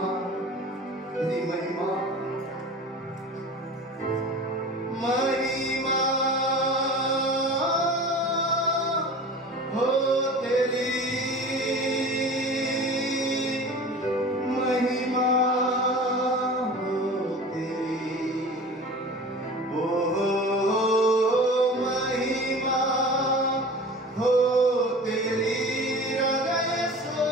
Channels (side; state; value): both; normal; correlation 0.38